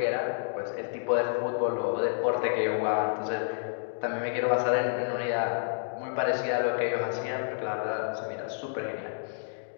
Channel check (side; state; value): right; silent; digital silence